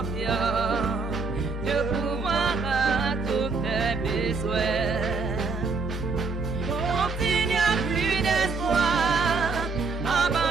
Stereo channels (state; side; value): quieter; left; 4.3 dB